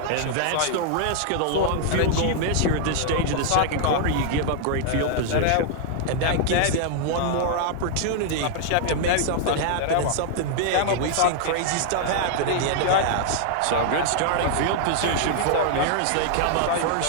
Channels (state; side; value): different; both; correlation -0.01